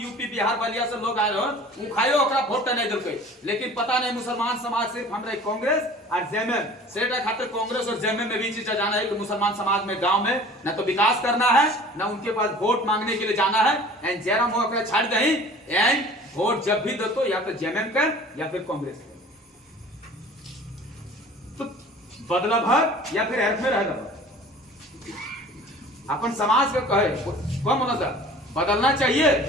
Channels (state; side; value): normal; both; correlation 0.45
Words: यूपी बिहार बलिया से लोग आए हो उखायो ओकरा वोट नहीं दिलके, लेकिन पता नहीं मुसलमान समाज सिर्फ हमरा कांग्रेस और जेएमएम सेटा खातिर कांग्रेस और जेएमएम में भी चीज जाना है कि मुसलमान समाज में गांव में न तो विकास करना है, न उनके पास वोट मांगने के लिए जाना है। एंड जयराम हो ओकरा छाड़ दही एंड वोट जब भी दो तो या तो जेएमएम का या फिर कांग्रेस का, तो बदला भर या फिर अर्थ में रह अपन समाज के कहे कम होना था बदलना चाहिए,